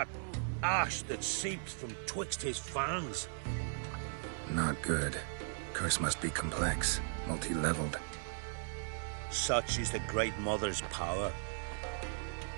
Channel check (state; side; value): silent; left; 53 dB below the other